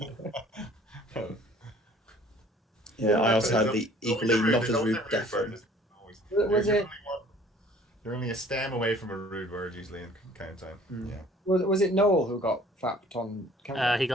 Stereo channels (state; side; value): normal; both; correlation 0.53